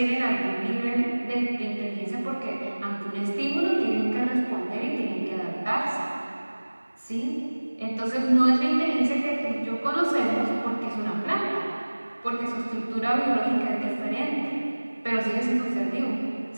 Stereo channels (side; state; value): both; inverted; correlation -1.00